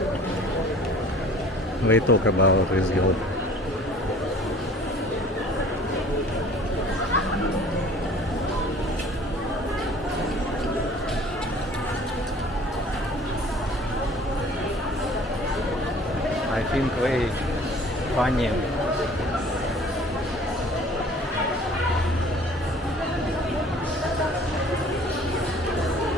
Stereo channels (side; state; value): both; normal; correlation 0.50